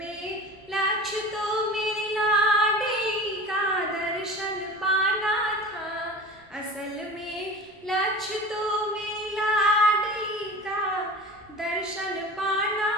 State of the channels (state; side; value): normal; both; correlation 0.35